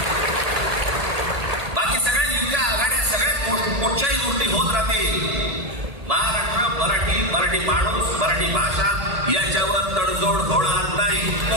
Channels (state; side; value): late; left; 1.8 ms